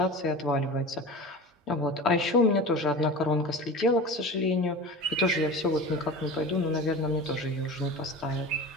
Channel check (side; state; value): both; normal; correlation 0.33